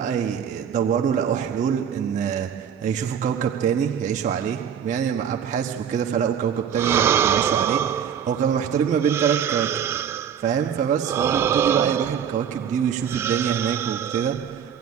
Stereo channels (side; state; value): left; quieter; 8.2 dB